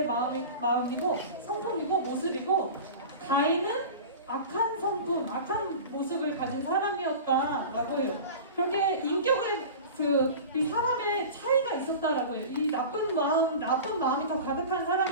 마음이고 성품이고 모습이고, 가인은 악한 성품, 악한 모습을 가진 사람이었다라고 해요. 그렇게 인격의 이 사람의 차이가 있었다라고 해요. 이 나쁜 마음이 더 가득한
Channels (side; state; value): both; inverted; correlation -0.34